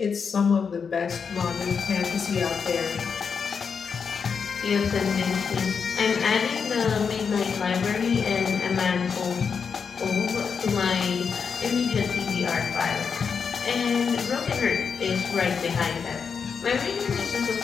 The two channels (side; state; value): right; quieter; 6.1 dB